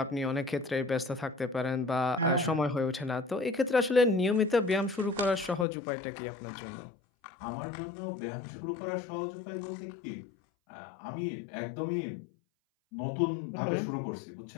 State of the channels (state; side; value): drops out; right; at 5.7 s